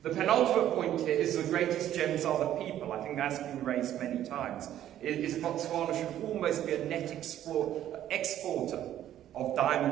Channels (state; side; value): quieter; left; 11.8 dB